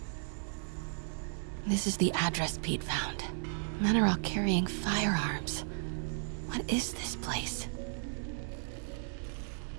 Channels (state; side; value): silent; left; digital silence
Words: This is the address Pete found. Men are all carrying firearms. What is this place?